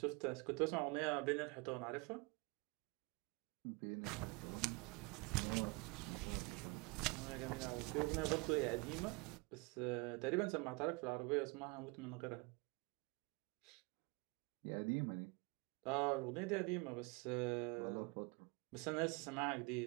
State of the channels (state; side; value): quieter; left; 28.0 dB